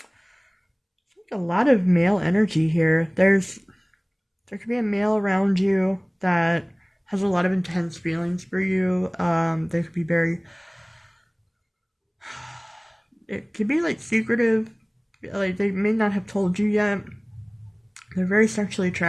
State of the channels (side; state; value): both; identical; correlation 1.00